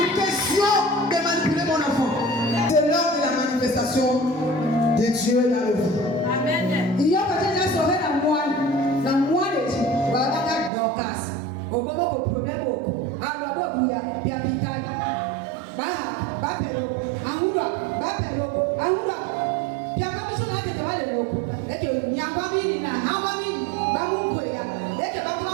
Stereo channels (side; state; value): left; drops out; at 10.7 s